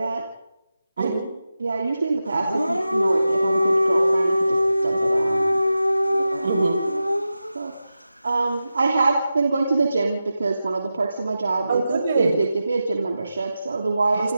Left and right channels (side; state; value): both; inverted; correlation -0.92